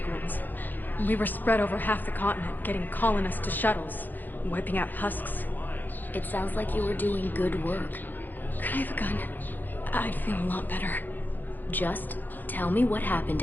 ones. We were spread over half the continent, getting colonists to shuttles, wiping out husks. It sounds like you were doing good work. Could I have a gun? I'd feel a lot better. Just tell me what happened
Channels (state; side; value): late; right; 0.086 ms